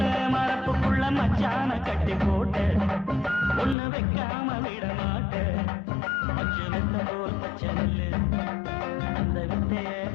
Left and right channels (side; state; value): right; drops out; at 3.8 s